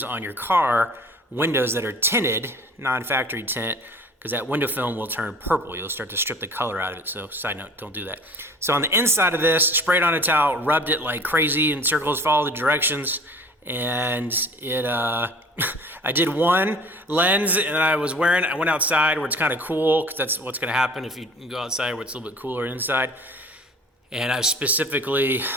on your car windows that are tinted, non-factory tint, because that window film will turn purple. You'll start to strip the color out of it. So side note, don't do that. So on the inside of this, sprayed on a towel, rubbed it like crazy in circles, followed the directions, and it I did one lens, and I went outside where it's kind of cool, because that's what's going to happen if you go outside where it's a little bit cooler inside. And I specifically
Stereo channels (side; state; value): both; normal; correlation 0.46